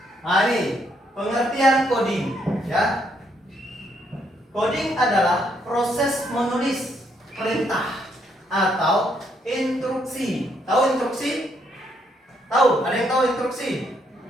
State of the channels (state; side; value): normal; both; correlation 0.73